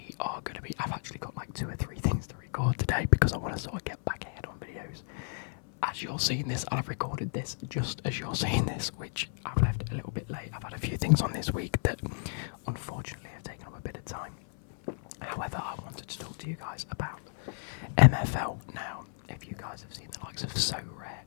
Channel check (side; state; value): right; silent; 56 dB below the other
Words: I've actually got like 2 or 3 things to record today because I want to sort of get back ahead on videos. As you're seeing this, I've recorded this just as you're seeing this, which I've left it a little bit late. I've had a few things on this week that unfortunately have taken up a bit of time. However, I wanted to talk to you guys about MFL. Now, if you guys have seen the likes of So Rare